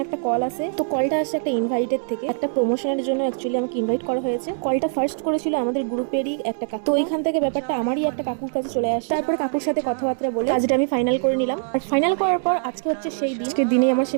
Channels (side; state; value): left; silent; digital silence